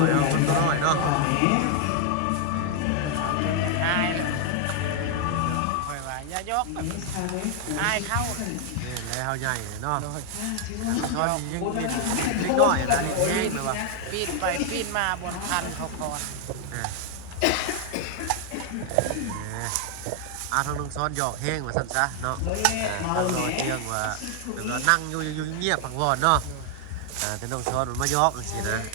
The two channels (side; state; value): both; different; correlation 0.00